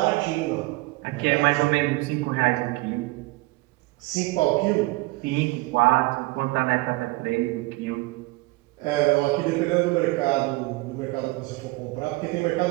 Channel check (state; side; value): quieter; left; 22.2 dB